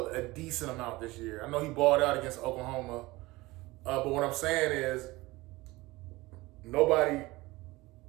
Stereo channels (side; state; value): left; quieter; 20.7 dB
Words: a decent amount this year. I know he balled out against Oklahoma. But what I'm saying is nobody